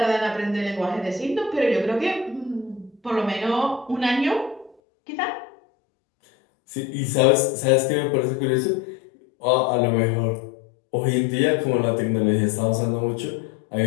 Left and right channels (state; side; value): drops out; right; at 4.8 s